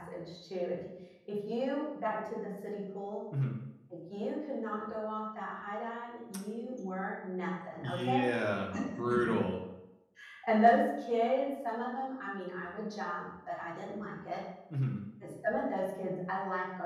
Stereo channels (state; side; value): identical; both; correlation 1.00